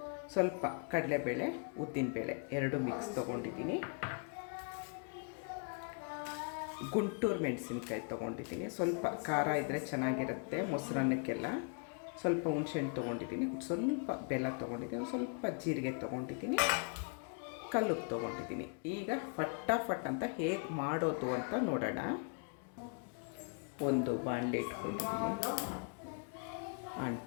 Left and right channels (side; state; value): right; quieter; 39.7 dB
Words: ಸ್ವಲ್ಪ ಕಡಲೆಬೇಳೆ, ಉದ್ದಿನಬೇಳೆ ಎರಡು ಮಿಕ್ಸ್ ತೊಗೊಂಡಿದ್ದೀನಿ. ಗುಂಟೂರು ಮೆಣಸಿನ್ಕಾಯಿ ತೊಗೊಂಡಿದ್ದೀನಿ. ಸ್ವಲ್ಪ ಖಾರ ಇದ್ದರೆ ಚೆನ್ನಾಗಿರುತ್ತೆ ಮೊಸರನ್ನಕ್ಕೆಲ್ಲ. ಸ್ವಲ್ಪ ಹುಣ್ಸೆಹಣ್ಣು ತೊಗೊಂಡಿದ್ದೀನಿ. ಸ್ವಲ್ಪ ಬೆಲ್ಲ ತೊಗೊಂಡಿದ್ದೀನಿ. ಸ್ವಲ್ಪ ಜೀರಿಗೆ ತೊಗೊಂಡಿದ್ದೀನಿ. ಕಲ್ಲುಪ್ಪು ತೊಗೊಂಡಿದ್ದೀನಿ. ಈಗ ಫಟಾಫಟ್ ಅಂತ ಹೇಗೆ ಮಾಡೋದು ಅಂತ ನೋಡೋಣ. ಒಂದು ಬಾಣಲೆ ಇಟ್ಕೊಂಡಿದ್ದೀನಿ.